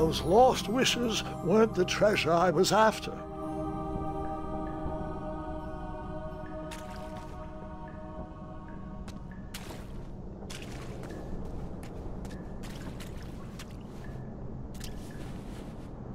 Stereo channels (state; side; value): identical; both; correlation 1.00